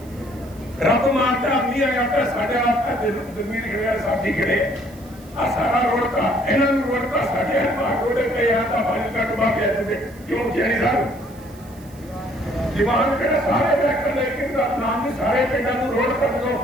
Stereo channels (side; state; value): right; noise; hiss, 25 dB below the sound